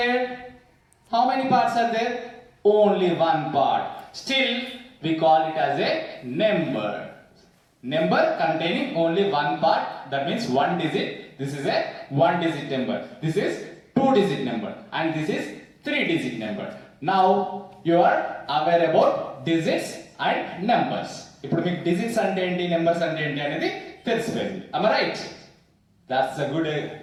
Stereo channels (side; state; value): both; identical; correlation 1.00